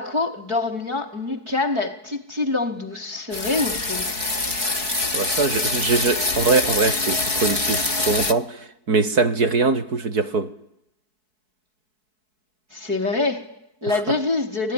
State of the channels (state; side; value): late; left; 4.6 ms